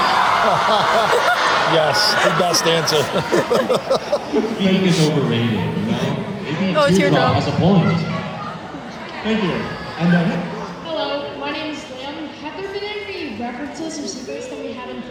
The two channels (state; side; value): identical; both; correlation 1.00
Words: Yes, the best answer. Speaking is overrated, Maybe Oh, it's your Teardrop job. has a point. thank you. And Hello, my name is Liam. Have there been any references or secrets that we haven't